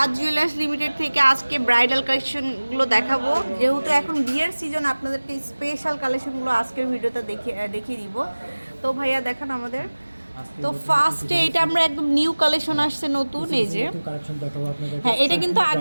জুয়েলার্স লিমিটেড থেকে আজকে ব্রাইডাল কালেকশনগুলো দেখাবো। যেহেতু এখন বিয়ের সিজন, আপনাদেরকে স্পেশাল কালেকশনগুলো আজকের ভিডিওতে দেখিয়ে দিব। তো ভাইয়া দেখান আমাদের। তো ফার্স্টে এটা আমরা একদম নিউ কালেকশন আসছে, নতুন। এই যে হ্যাঁ, এটা কিন্তু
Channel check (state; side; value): inverted; both; correlation -1.00